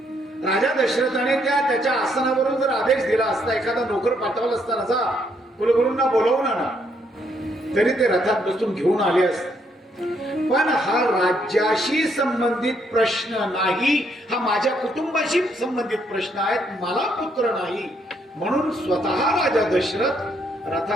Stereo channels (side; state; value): both; normal; correlation 0.72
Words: राजा दशरथाने त्याच्या आसनावरून जर आदेश दिला असता, एखादा नोकर पाठवला असताना जा कुलगुरूंना बोलवून आणा, तरी ते रथात बसून घेऊन आले असते. पण हा राज्याशी संबंधित प्रश्न नाही, हा माझ्या कुटुंबाशी संबंधित प्रश्न आहेत, मला पुत्र नाही. म्हणून स्वतः राजा दशरथ